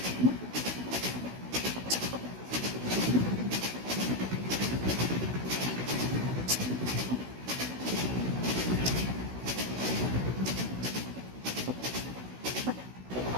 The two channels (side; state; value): left; late; 16 ms